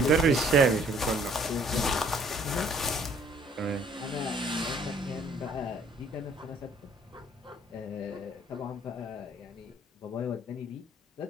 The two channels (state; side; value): normal; both; correlation 0.59